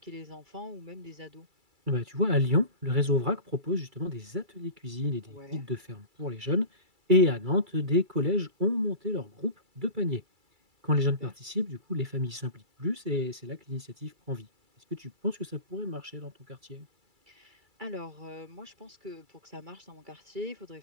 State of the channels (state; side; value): late; left; 2.3 ms